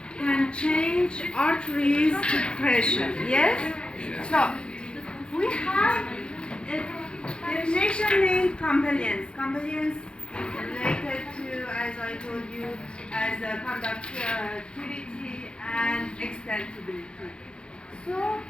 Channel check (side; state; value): right; late; 0.054 ms